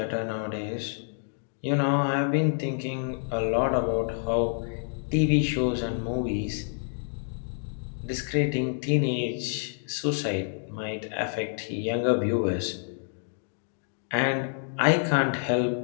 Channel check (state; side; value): silent; right; digital silence